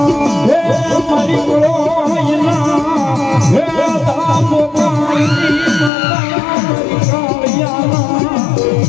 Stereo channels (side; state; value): right; drops out; at 5.9 s